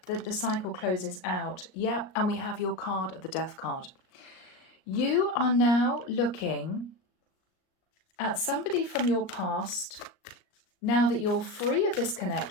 that the cycle closes out. Yep, and we have your card of the Death card. You are now looking at somebody from your past, now that you're free of this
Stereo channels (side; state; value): right; late; 38 ms